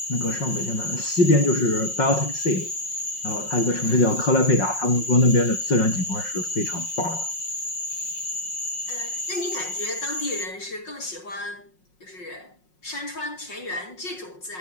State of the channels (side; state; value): right; late; 5.5 ms